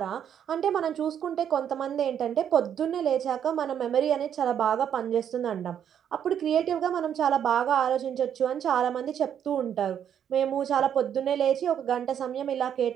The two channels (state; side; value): quieter; left; 9.1 dB